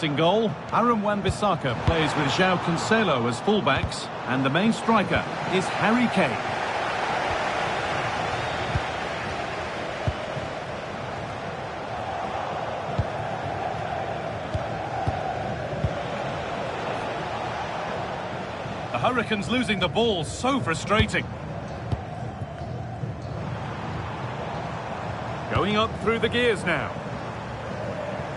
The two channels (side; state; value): both; identical; correlation 1.00